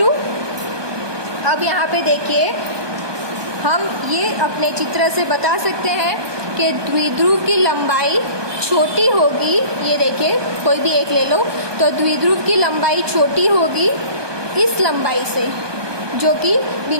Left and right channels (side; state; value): left; late; 1.2 ms